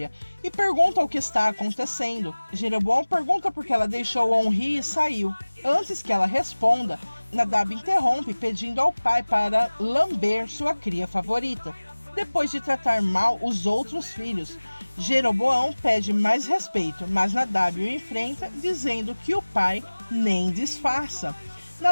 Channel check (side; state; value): both; inverted; correlation -1.00